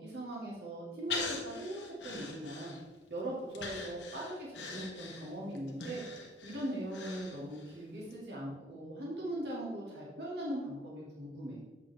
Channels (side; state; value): both; normal; correlation 0.50